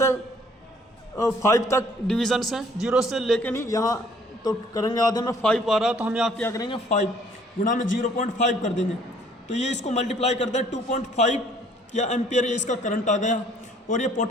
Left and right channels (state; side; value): normal; both; correlation 0.59